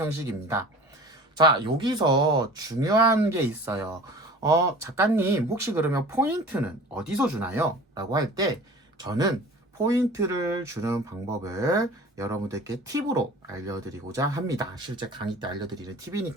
자, 여기서 중요한 게 있어요. 작가님, 혹시 그러면 포인트는 어디서 주나요? 라고 할 때, 저는 포인트를 주는 방법을 여러분들께 팁으로 알려드리고자 합니다. 실제 강의 때 알려드리는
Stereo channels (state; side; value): normal; both; correlation 0.42